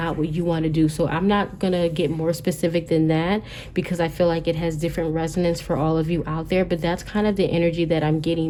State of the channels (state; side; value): identical; both; correlation 1.00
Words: what you want to do. So I'm not gonna get more specific than that because I feel like it has different resonance for all of you out there, but that's kind of the energy that I'm